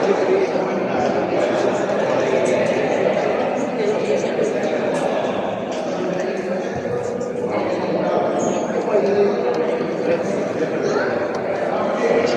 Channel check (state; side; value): identical; both; correlation 1.00